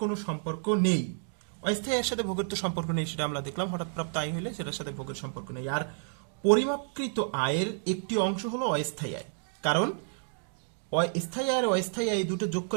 কোনো সম্পর্ক নেই, অস্থায়ী আয়ের সাথে ভোগের তো সম্পর্ক নেই, সেটা আমরা দেখলাম, হঠাৎ প্রাপ্ত আয় হলে সেটার সাথে ভোগের সম্পর্ক নেই। আর পরিমাপকৃত আয়ের একটি অংশ হলো অস্থায়ী আয়, কারণ স্থায়ী আয় আর অস্থায়ী আয় এই দুটো যোগ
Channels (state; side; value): silent; left; digital silence